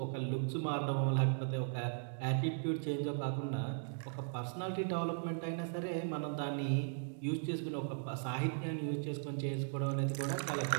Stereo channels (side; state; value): left; silent; digital silence